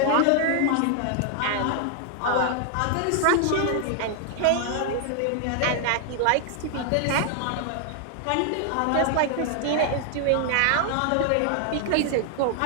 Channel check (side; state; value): both; different; correlation 0.00